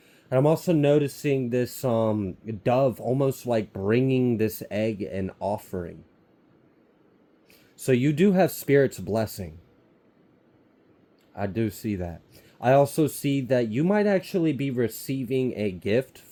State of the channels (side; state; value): both; identical; correlation 1.00